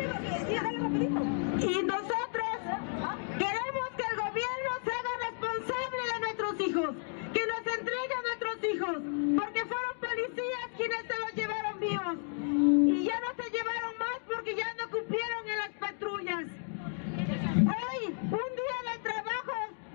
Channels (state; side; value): silent; right; 56 dB below the other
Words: Y nosotros queremos que el gobierno se haga responsable de nuestros hijos, que nos entregue a nuestros hijos, porque fueron policías quienes se los llevaron vivos. Y ya no se llevaron más porque ya no cumplieron en las patrullas. Hoy, un día de trabajo,